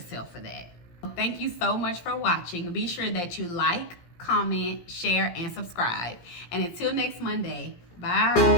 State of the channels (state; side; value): late; right; 17 ms